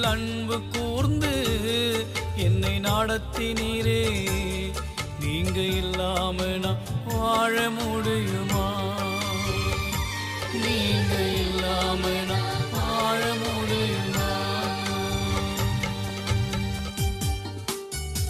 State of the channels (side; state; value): both; identical; correlation 1.00